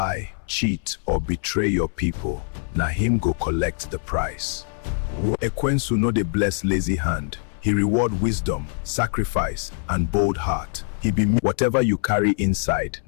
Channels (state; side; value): silent; right; 63 dB below the other